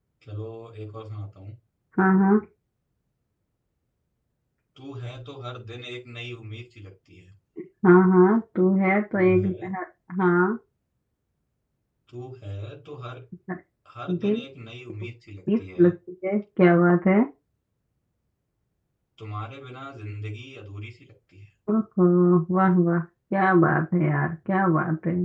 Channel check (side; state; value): both; identical; correlation 1.00